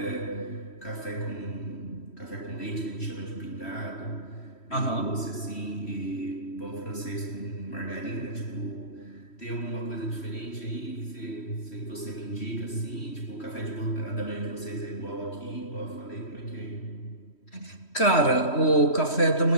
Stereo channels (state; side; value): late; right; 3.1 ms